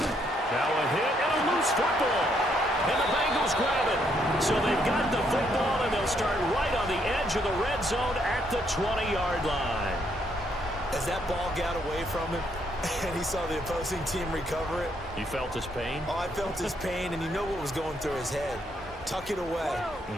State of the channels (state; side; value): normal; both; correlation 0.73